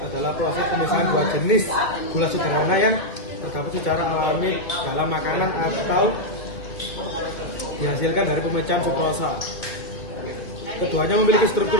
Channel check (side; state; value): right; late; 2.0 ms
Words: adalah proses pemisahan dua jenis gula sederhana yang terdapat secara alami dalam makanan atau dihasilkan dari pemisahan fruktosa. Keduanya memiliki